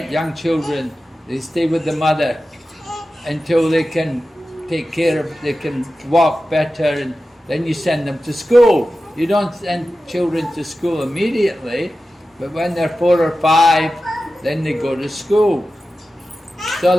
Young children, they stay with the mother until they can take care of, they can walk better, and then you send them to school. You don't send children to school immediately, but when they're 4 or 5, then they go to school. So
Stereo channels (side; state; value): both; normal; correlation 0.94